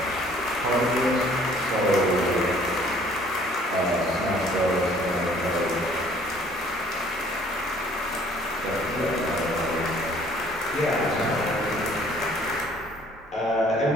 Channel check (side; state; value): both; normal; correlation 0.57